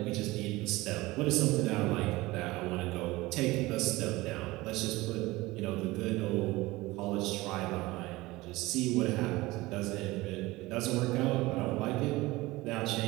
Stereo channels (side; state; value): left; quieter; 20.2 dB